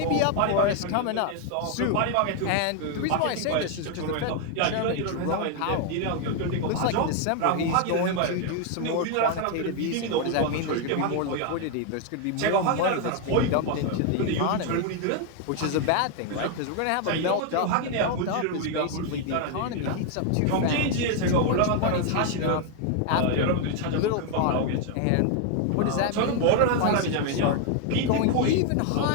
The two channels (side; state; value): both; different; correlation 0.00